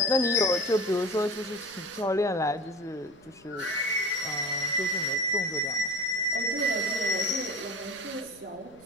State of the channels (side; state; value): right; noise; rumble, 29 dB below the sound